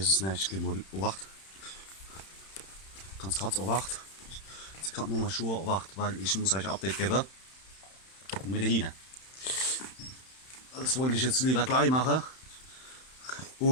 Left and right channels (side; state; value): right; late; 31 ms